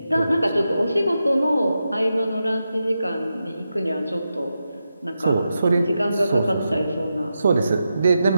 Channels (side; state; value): both; inverted; correlation -0.88